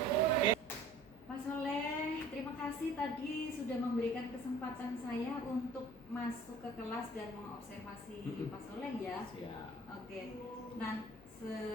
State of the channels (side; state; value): right; noise; hum, 28 dB below the sound